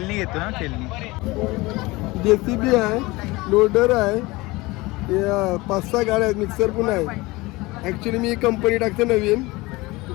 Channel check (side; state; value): right; quieter; 21.9 dB